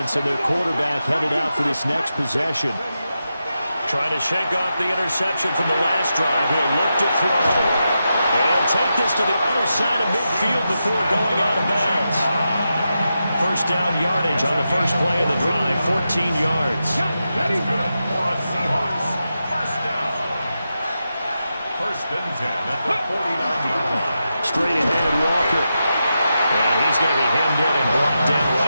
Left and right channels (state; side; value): inverted; both; correlation -0.88